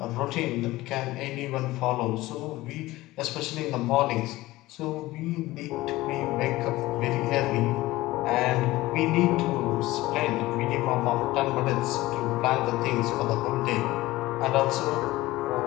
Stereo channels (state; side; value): quieter; right; 18.2 dB